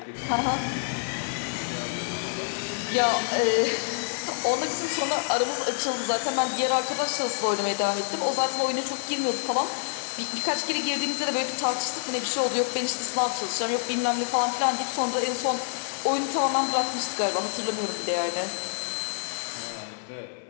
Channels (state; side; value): silent; right; digital silence